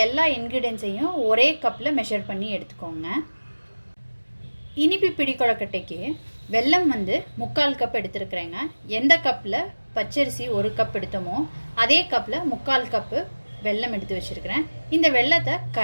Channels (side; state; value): both; inverted; correlation -1.00